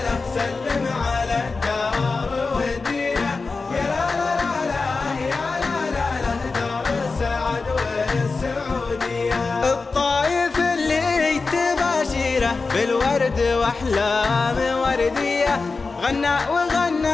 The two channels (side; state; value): right; quieter; 4.1 dB